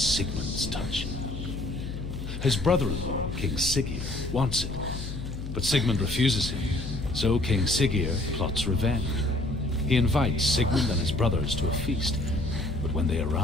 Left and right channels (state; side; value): noise; left; hum, 7 dB below the sound